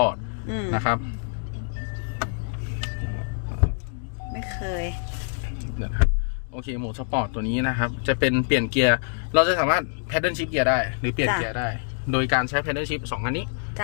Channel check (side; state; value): right; silent; digital silence